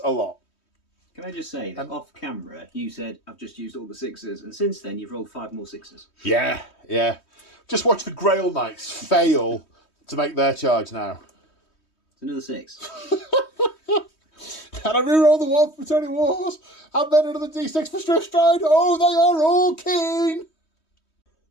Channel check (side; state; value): right; late; 3.2 ms